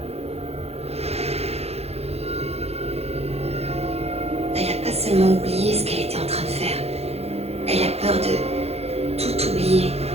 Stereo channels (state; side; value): late; left; 0.30 ms